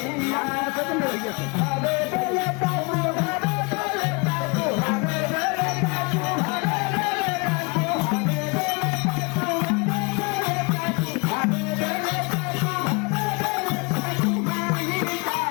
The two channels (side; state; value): right; quieter; 29.8 dB